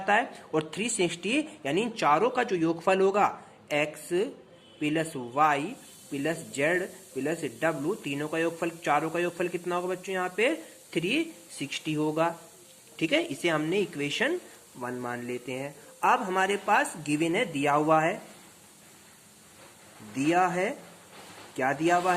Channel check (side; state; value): both; identical; correlation 1.00